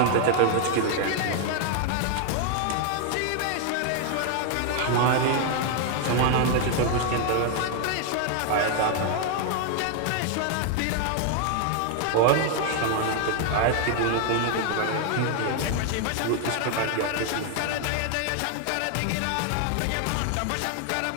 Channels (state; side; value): different; both; correlation 0.00